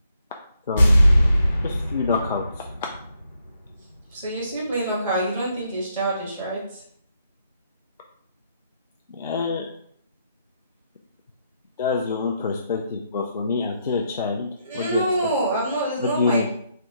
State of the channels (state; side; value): inverted; both; correlation -0.76